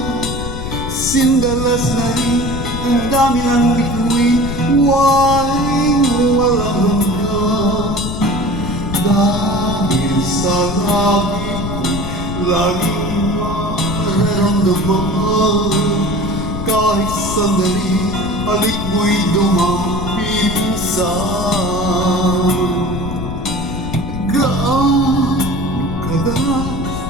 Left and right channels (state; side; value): noise; left; rumble, 6 dB below the sound